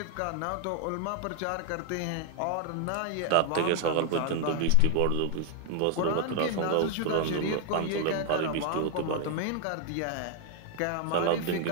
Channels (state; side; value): different; both; correlation 0.00